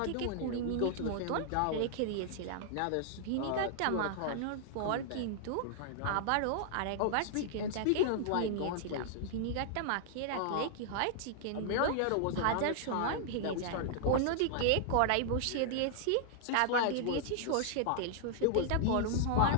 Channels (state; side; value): different; both; correlation -0.01